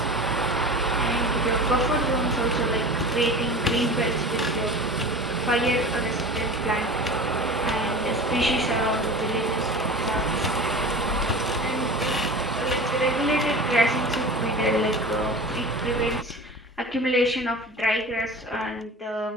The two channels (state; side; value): normal; both; correlation 0.35